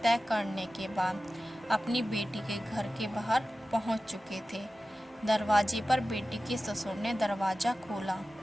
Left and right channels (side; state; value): both; normal; correlation 0.95